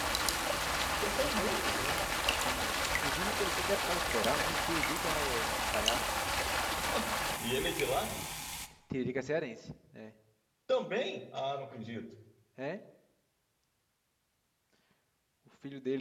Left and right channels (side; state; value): both; identical; correlation 1.00